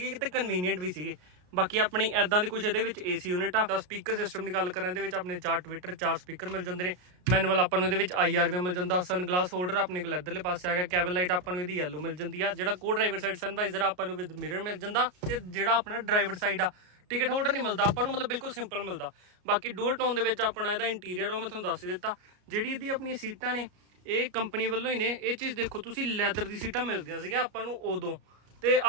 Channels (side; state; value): left; late; 33 ms